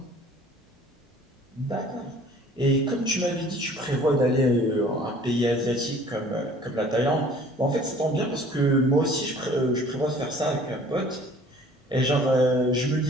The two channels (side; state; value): both; normal; correlation 0.51